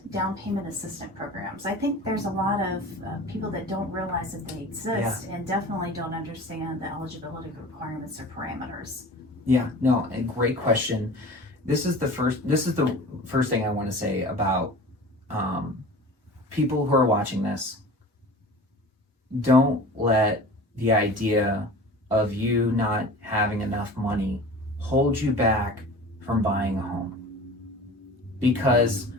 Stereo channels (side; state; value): both; normal; correlation 0.39